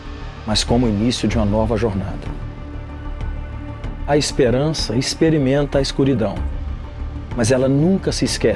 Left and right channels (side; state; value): both; identical; correlation 1.00